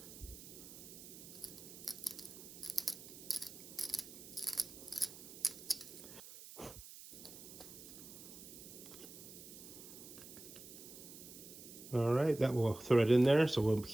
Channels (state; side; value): noise; right; hiss, 15 dB below the sound